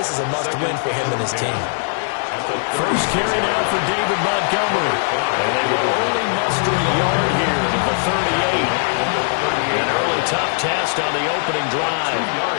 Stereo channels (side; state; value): right; silent; 66 dB below the other